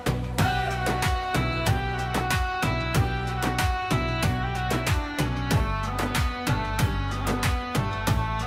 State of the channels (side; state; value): both; identical; correlation 1.00